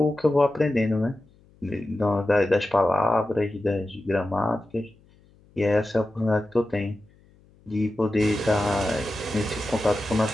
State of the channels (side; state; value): left; noise; hum, 30 dB below the sound